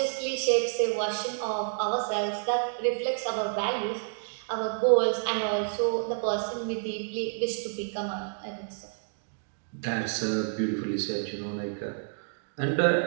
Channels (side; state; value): left; silent; digital silence